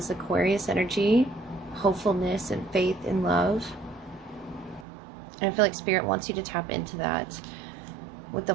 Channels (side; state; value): left; drops out; at 4.9 s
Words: Aquarius energy, hopefulness and faith in love. And I feel like Spirit wants you to tap into that with the